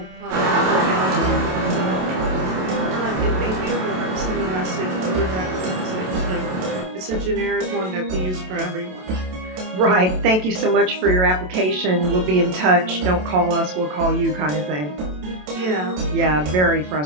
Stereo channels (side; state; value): left; late; 27 ms